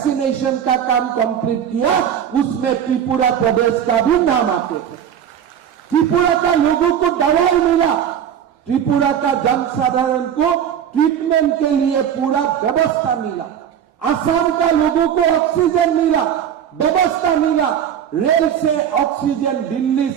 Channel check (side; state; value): left; quieter; 9.1 dB